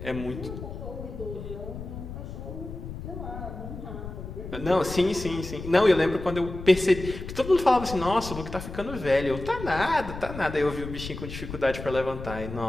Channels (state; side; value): noise; left; rumble, 9 dB below the sound